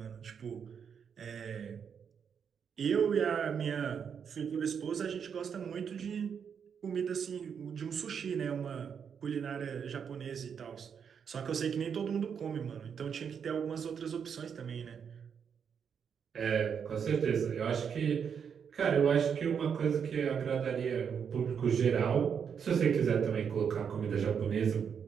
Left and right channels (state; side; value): quieter; left; 7.2 dB